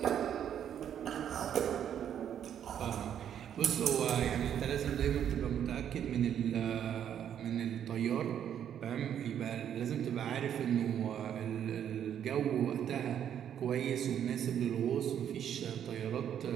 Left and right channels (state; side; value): quieter; left; 9.5 dB